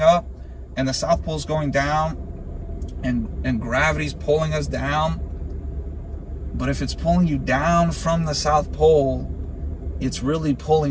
up and the South Pole's going down and gravity's pulling us down. But if it's pulling you down from the South Pole, it's really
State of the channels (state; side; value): identical; both; correlation 1.00